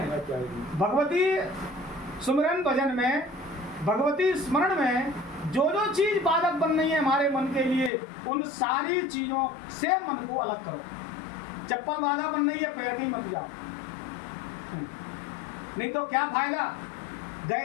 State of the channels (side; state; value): right; drops out; at 7.9 s